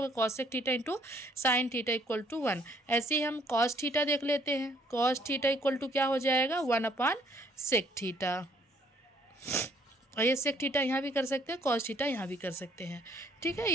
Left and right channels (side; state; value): both; normal; correlation 0.64